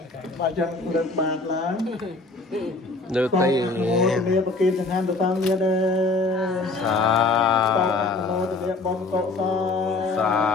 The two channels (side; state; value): right; quieter; 3.4 dB